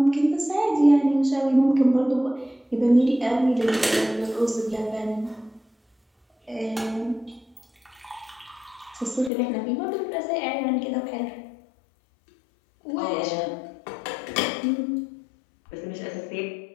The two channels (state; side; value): drops out; right; at 9.3 s